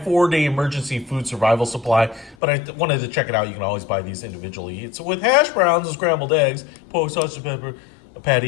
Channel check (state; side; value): drops out; right; at 2.4 s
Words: emergency food survival supply, but I wanted to check it out. You can always buy these individually. It's with hash browns and scrambled eggs, pork, sausage, pepper,